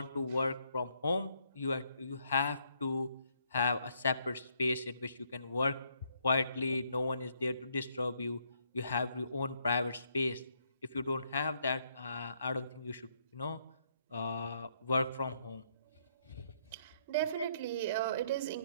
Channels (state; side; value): inverted; both; correlation -0.71